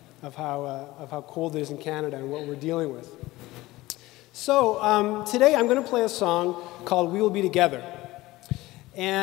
of how cold it is in Canada and what we're dealing with. So today I'm going to play a song called "We Will Be Together,"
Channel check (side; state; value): right; quieter; 18.7 dB